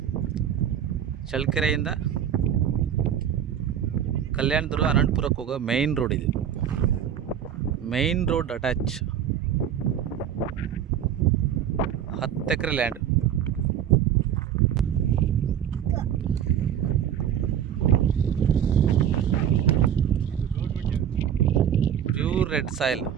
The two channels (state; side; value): quieter; left; 9.5 dB